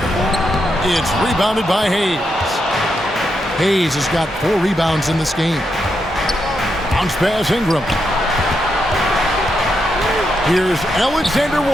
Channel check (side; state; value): both; normal; correlation 0.83